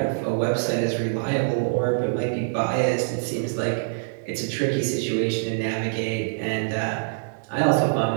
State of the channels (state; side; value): silent; left; digital silence